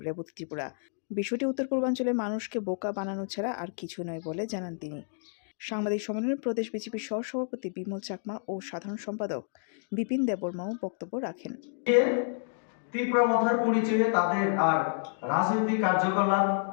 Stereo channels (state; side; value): silent; right; digital silence